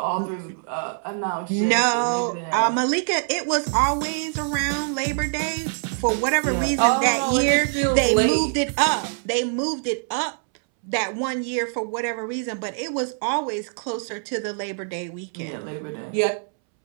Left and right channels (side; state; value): left; silent; 63 dB below the other